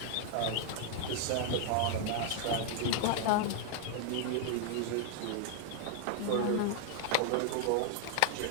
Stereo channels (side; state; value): both; different; correlation 0.00